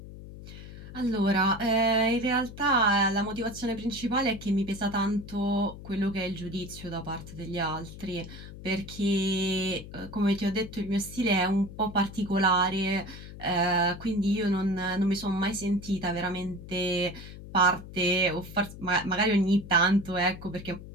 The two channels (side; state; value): left; noise; hum, 14 dB below the sound